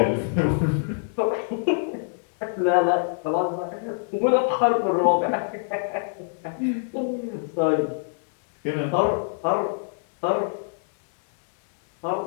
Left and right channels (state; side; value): silent; right; digital silence